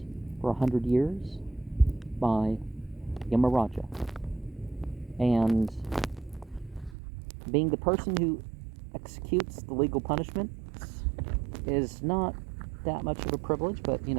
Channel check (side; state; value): left; drops out; at 7.0 s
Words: for 100 years by Yamaraja. And being the person who executes the legal punishments is not that much of a privilege, but it